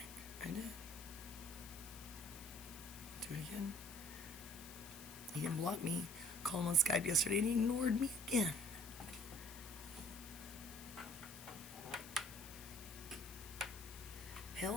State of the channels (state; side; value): noise; left; hiss, 14 dB below the sound